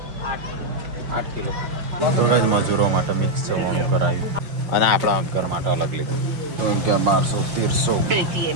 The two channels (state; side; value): late; left; 5.7 ms